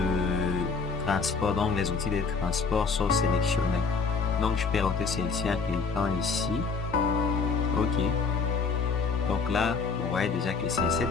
transport, donc les outils de transport sont sélectionnés. Donc je peux roter celle-ci en cliquant ici. Ok. Donc là, vous voyez déjà que c'est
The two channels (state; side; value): quieter; right; 4.8 dB